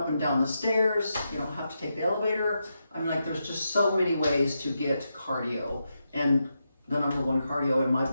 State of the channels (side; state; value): both; inverted; correlation -0.85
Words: and down the stairs, you don't have to take the elevator. I mean, like, there's just so many ways to get cardio. And the number one cardio in my